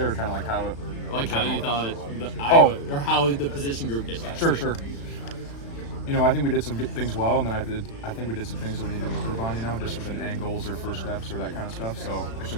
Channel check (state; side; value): late; right; 36 ms